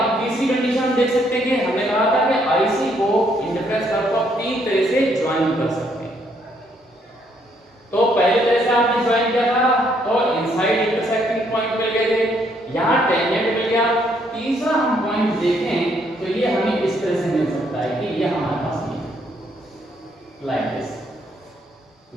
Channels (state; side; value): normal; both; correlation 0.70